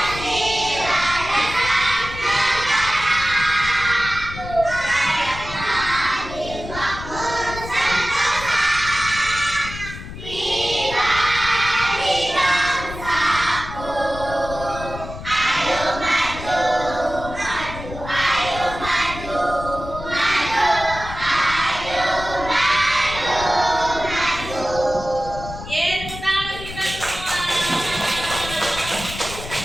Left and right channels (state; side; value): noise; left; rumble, 11 dB below the sound